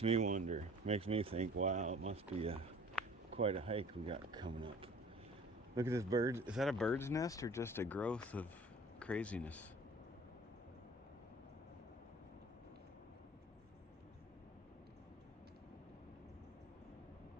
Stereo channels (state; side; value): normal; both; correlation 0.48